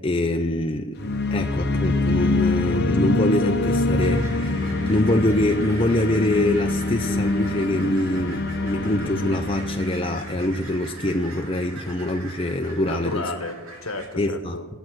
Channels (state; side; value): normal; both; correlation 0.63